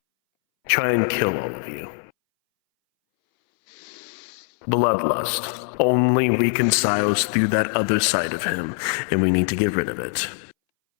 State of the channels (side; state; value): right; silent; 62 dB below the other